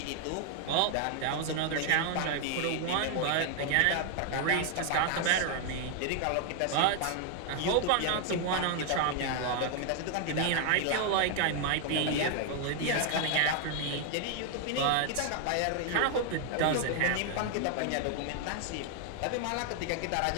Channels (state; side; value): different; both; correlation 0.00